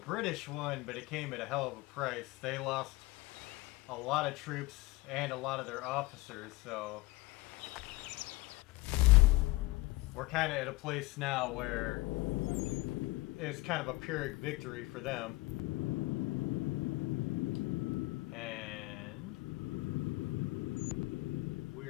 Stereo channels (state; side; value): quieter; right; 21.2 dB